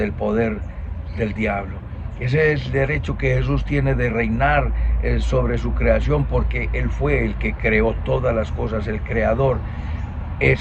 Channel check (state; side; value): identical; both; correlation 1.00